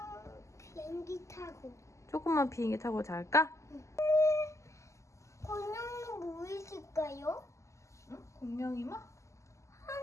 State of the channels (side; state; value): right; late; 0.14 ms